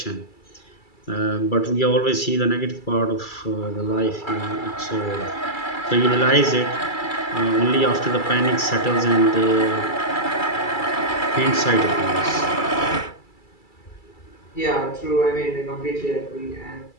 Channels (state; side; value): late; right; 2.3 ms